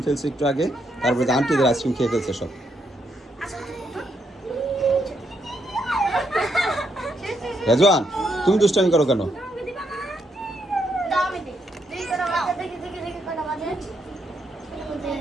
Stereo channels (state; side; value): normal; both; correlation 0.77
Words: ফেলছে একটু আগে, তারপরে আন্টিদের আইসক্রিম খেয়ে ফেলছে সব। রেজওয়ান তুমি দুষ্টামি করো কেন?